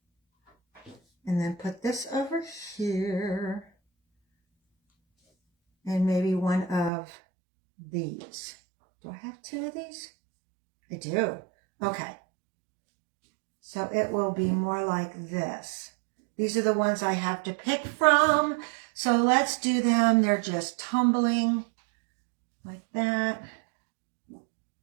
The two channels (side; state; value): left; drops out; at 6.9 s